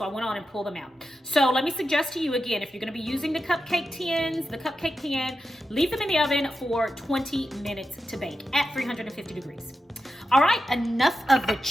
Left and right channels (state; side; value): normal; both; correlation 0.90